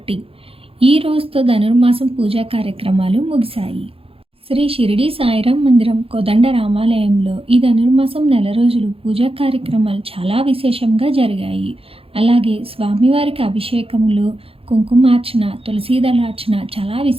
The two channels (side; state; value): left; late; 0.27 ms